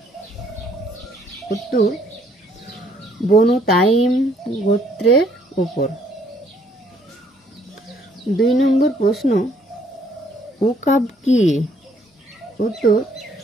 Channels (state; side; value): normal; both; correlation 0.65